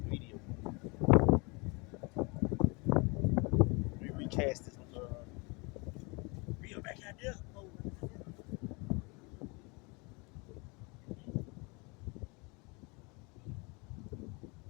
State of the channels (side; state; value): right; quieter; 29.0 dB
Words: a video. Let me recast this reel back out there.